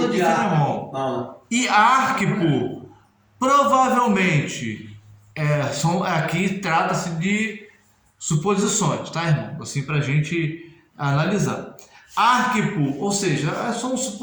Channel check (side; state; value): both; identical; correlation 1.00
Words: de Filemão. Não. E Arquipo, provavelmente, aqui trata-se de suposições, tá, irmão? Assim, para a gente analisar. Arquipo, ou seja, são